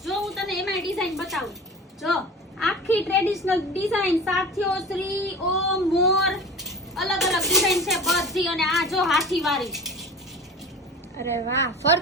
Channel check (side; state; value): both; normal; correlation 0.36